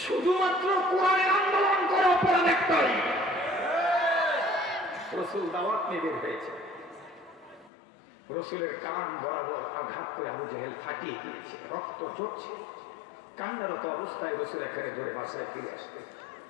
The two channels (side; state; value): right; drops out; at 7.7 s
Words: শুধুমাত্র কোরআনের আন্দোলন করে অপরাধ একটাই। রসুল দাওয়াত নিয়ে বের হয়েছে, রসুলের কান বরাবর আঘাত করে আবু জেহেল ফাটিয়ে দিয়েছে, রক্ত ঝরছে। কান্নারত অবস্থায় রসুল এখানে ধরে বাসায় ফিরে আসবে।